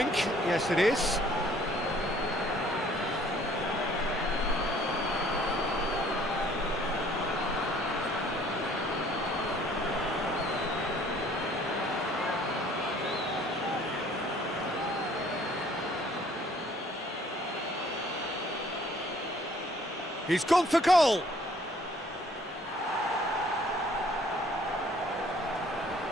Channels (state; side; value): normal; both; correlation 0.58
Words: Yes, it is. He's gone for goal.